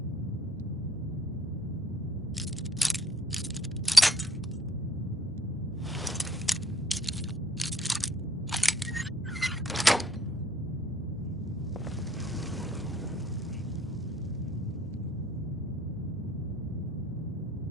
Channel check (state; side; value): normal; both; correlation 0.61